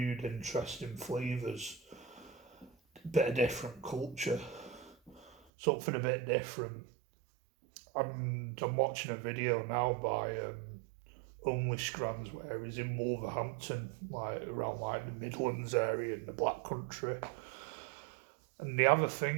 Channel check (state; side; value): drops out; left; at 5.4 s